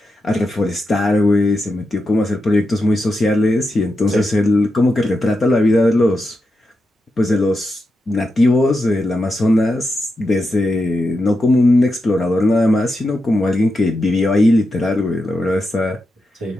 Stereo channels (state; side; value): normal; both; correlation 0.87